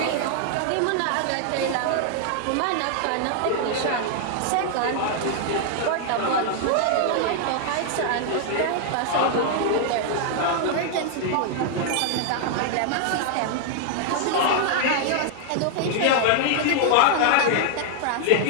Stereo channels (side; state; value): both; different; correlation 0.00